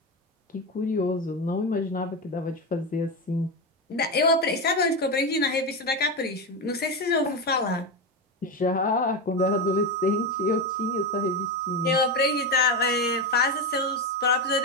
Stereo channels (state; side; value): normal; both; correlation 0.15